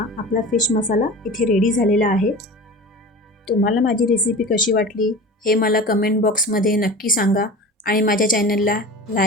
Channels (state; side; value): normal; both; correlation 0.34